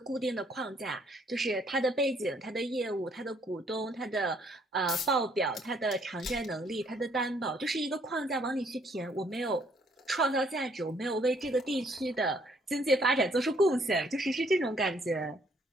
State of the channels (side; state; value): both; normal; correlation 0.66